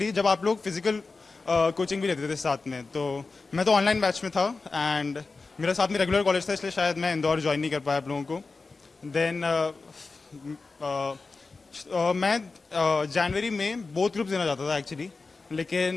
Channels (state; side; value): quieter; right; 4.0 dB